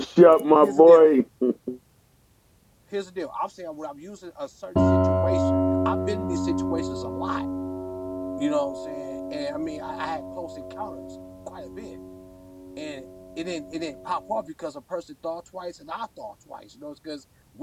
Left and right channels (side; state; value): both; identical; correlation 1.00